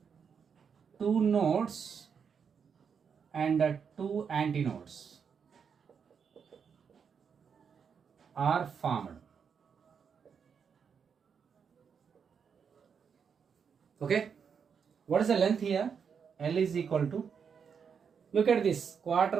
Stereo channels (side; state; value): left; quieter; 6.6 dB